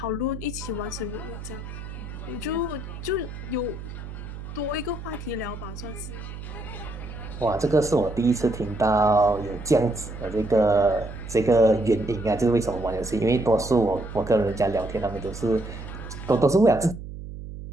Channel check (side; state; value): right; noise; hum, 10 dB below the sound